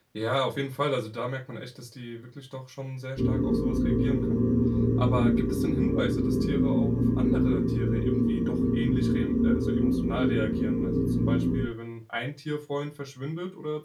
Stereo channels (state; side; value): identical; both; correlation 1.00